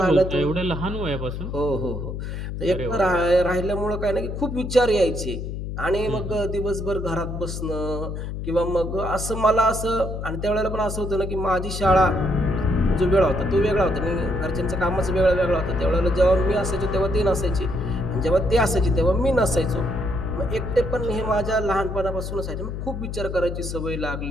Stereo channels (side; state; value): left; noise; hum, 6 dB below the sound